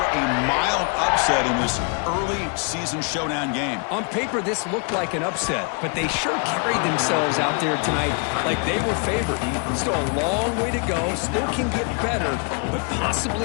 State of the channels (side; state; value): right; quieter; 37.5 dB